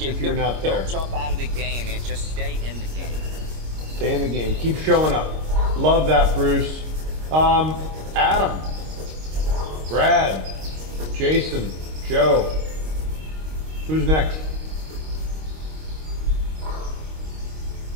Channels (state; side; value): late; left; 26 ms